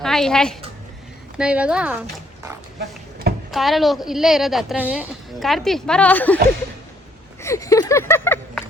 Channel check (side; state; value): both; normal; correlation 0.67